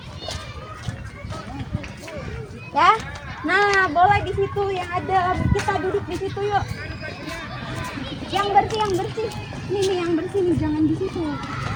Ya. Nah, boleh di situ yang ada. Kita duduk di situ yuk. Yang bersih. Nih yang bersih nih, jangan di situ.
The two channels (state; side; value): identical; both; correlation 1.00